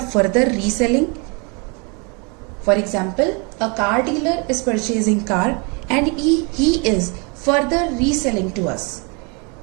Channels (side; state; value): left; quieter; 32.6 dB